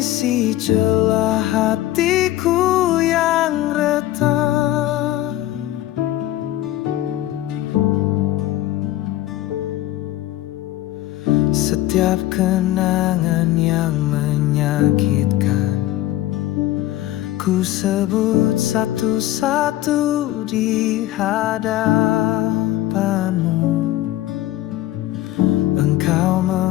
celah hatiku yang retak. Setiap kenangan yang menyakitkan ku sebut satu-satu di hadapan-Mu. Engkau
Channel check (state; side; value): quieter; right; 14.8 dB